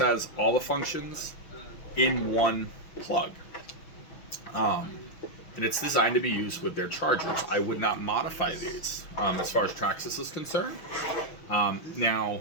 all the functions in one plug. And it's designed to be used with their chargers. I would not modify these as far as Traxxas is concerned. Now,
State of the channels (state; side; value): late; right; 6.2 ms